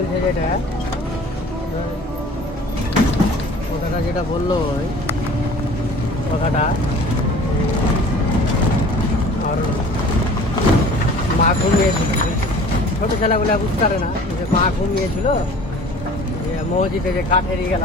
কথাটা যেটা বললো ওই কথাটা আর মা ঘুমিয়েছিল, ছোটো ছেলেগুলো বুঝতে পারে না যে মা ঘুমিয়েছিল, যে মসজিদে যে কাঠের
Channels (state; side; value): normal; both; correlation 0.46